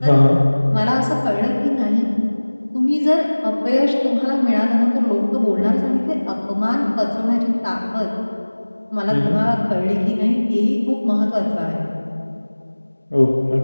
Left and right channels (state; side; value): inverted; both; correlation -1.00